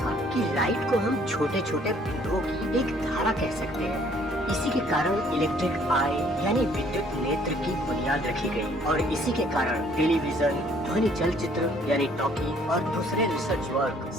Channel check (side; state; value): both; normal; correlation 0.61